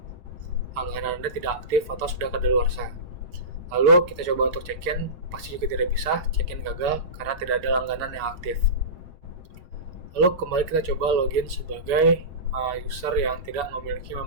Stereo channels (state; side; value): late; left; 7.0 ms